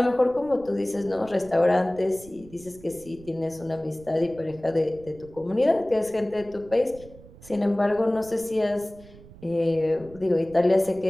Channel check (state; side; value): noise; right; rumble, 20 dB below the sound